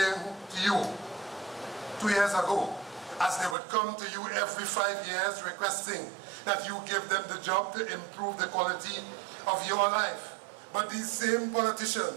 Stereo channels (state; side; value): drops out; left; at 3.6 s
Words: to you 2 years ago, as they would come to you every 5 years requesting that you give them the job to improve the quality of your life. But these same